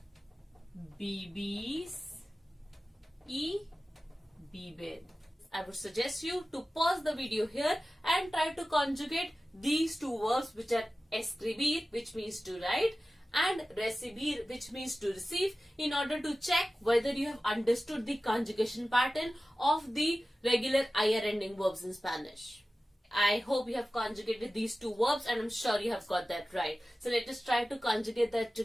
Vivís. Y viven. I would suggest you to pause the video here and try to conjugate these two verbs, which are escribir, which means to write, and recibir, which means to receive, in order to check whether you have understood the conjugation pattern of the regular ir ending verbs in Spanish. I hope you have conjugated these two verbs and I'm sure you have got that right. So let us try to conjugate that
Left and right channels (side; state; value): both; normal; correlation 0.95